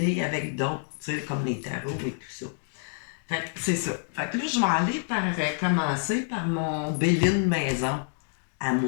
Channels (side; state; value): right; silent; digital silence